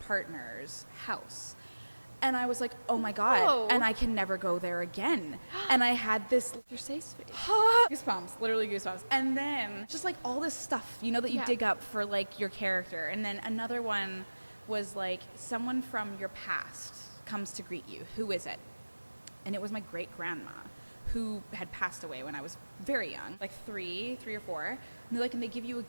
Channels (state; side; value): inverted; both; correlation -1.00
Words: house. And I was like, oh my God, Whoa. and I can never go there again. And I had this Your safe space. goosebumps, literally goosebumps. And then just like all this stuff, that you dig up for like your character. And then another one was like someone from your past comes to greet you. Who is it? And it was my great grandma who had passed away when I was very young, like three or four. And they're like, and they give you a